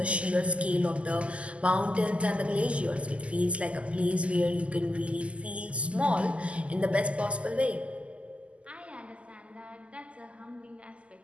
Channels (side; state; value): left; late; 0.059 ms